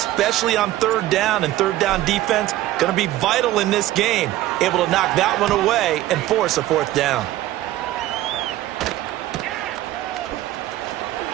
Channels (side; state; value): left; quieter; 15.0 dB